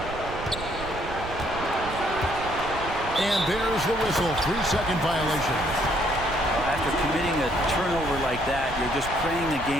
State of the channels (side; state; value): right; noise; rumble, 11 dB below the sound